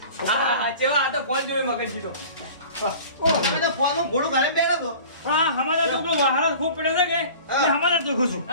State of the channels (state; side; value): inverted; both; correlation -0.42